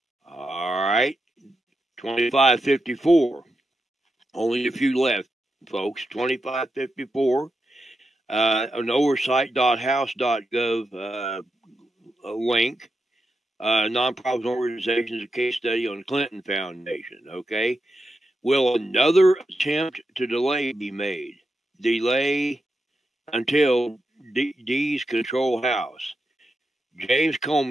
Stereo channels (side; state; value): both; normal; correlation 0.87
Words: All right, 2554. Only a few left, folks. 2554. An oversight.house.gov link. Nonprofit organizations, a case study on the Clinton Foundation. Okay. Will another attempt to delay be made? Delay until D's control House. James